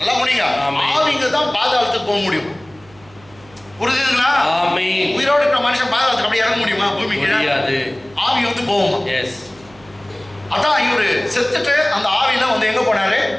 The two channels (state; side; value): noise; right; hum, 26 dB below the sound